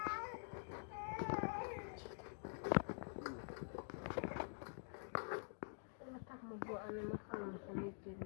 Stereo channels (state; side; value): silent; right; digital silence